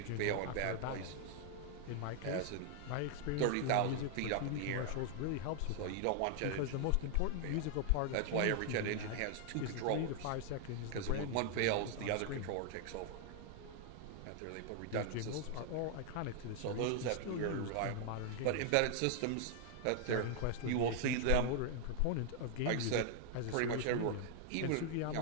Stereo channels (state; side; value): different; both; correlation 0.00